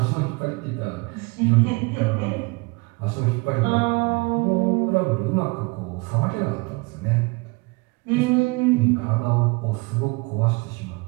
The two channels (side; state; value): left; quieter; 27.1 dB